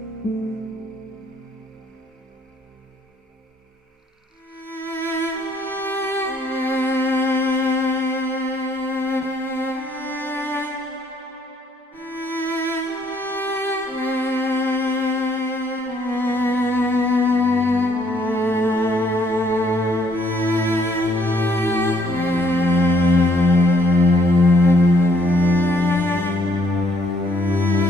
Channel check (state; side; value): normal; both; correlation 0.66